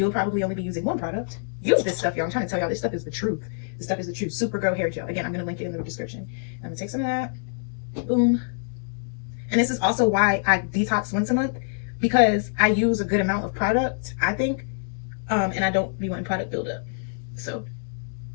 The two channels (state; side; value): silent; right; digital silence